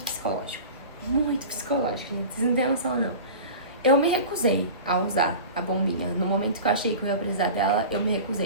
psicológico. Muito psicológico, gente. Vocês não têm noção, não. Eu me recusei a usar a bombinha. No momento que eu achei que eu ia precisar dela, eu me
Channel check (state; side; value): inverted; both; correlation -0.35